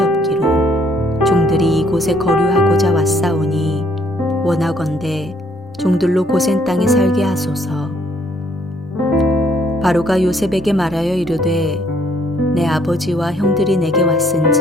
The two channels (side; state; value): both; normal; correlation 0.66